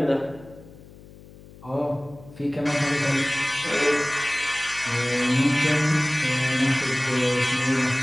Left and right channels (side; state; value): left; noise; hum, 21 dB below the sound